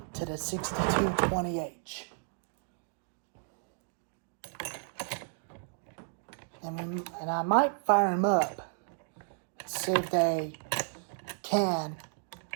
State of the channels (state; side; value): silent; left; digital silence